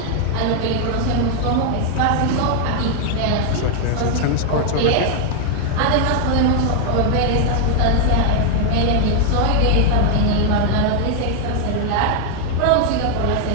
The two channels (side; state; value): both; different; correlation 0.00